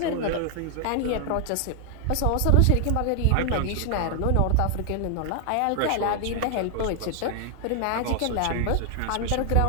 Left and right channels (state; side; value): different; both; correlation 0.00